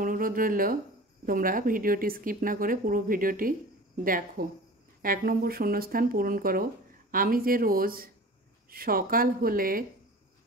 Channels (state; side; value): normal; both; correlation 0.39